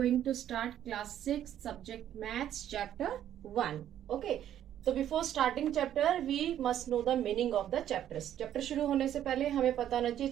to start class 6 subject maths chapter 1. Okay, so before starting chapter we must know the meaning of the chapters. Chapter शुरू होने से पहले हमें पता होना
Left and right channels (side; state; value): left; quieter; 11.0 dB